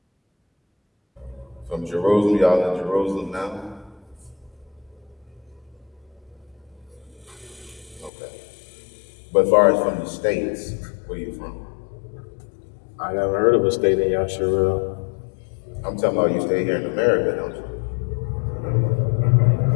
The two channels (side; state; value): right; drops out; at 8.1 s